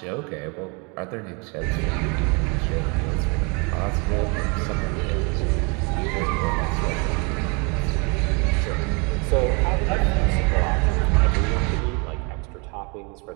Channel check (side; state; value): left; quieter; 31.8 dB